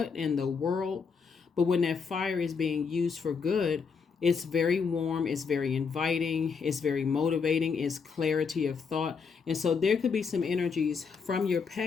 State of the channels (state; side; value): quieter; right; 5.6 dB